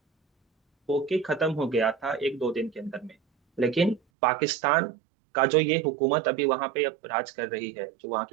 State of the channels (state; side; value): drops out; left; at 4.0 s